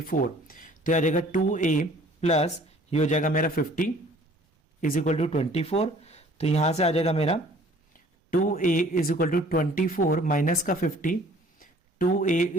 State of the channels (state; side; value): normal; both; correlation 0.53